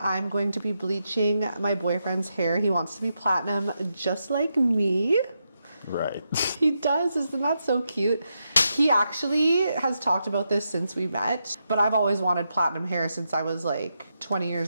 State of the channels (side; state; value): both; inverted; correlation -0.85